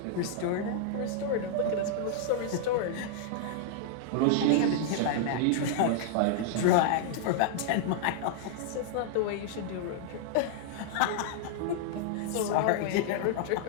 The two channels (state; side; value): different; both; correlation -0.01